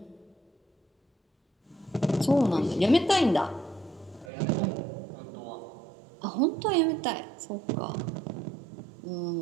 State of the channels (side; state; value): left; drops out; at 4.3 s